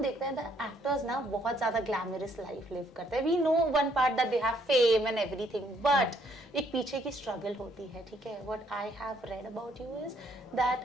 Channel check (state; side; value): normal; both; correlation 0.68